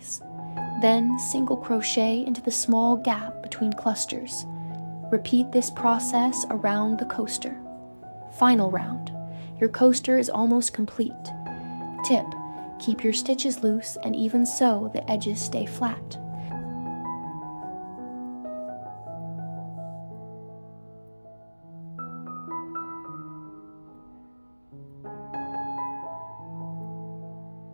Then single crochet into the small gap between clusters. Repeat this process around the coaster. Final round. Your coaster is almost complete. Tip: keep your stitches loose and even so the edges stay flat.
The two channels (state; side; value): inverted; both; correlation -1.00